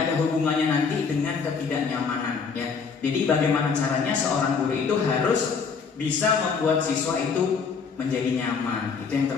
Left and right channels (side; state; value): right; quieter; 5.5 dB